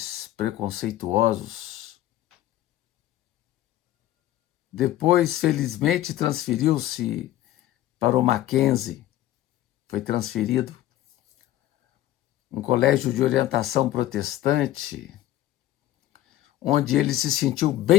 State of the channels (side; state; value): right; quieter; 14.1 dB